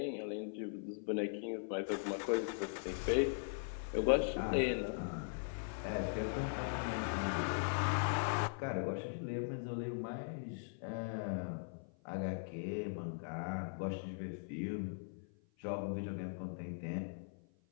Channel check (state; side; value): silent; right; 51 dB below the other